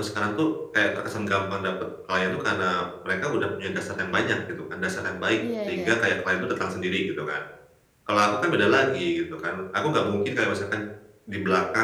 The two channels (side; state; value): both; identical; correlation 1.00